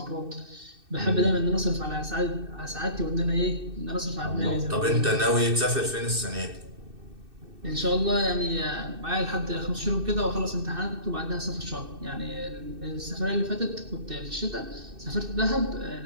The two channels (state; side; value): late; left; 2.6 ms